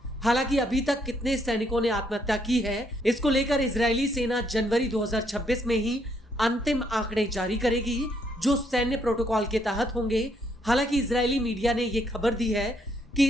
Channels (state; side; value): normal; both; correlation 0.72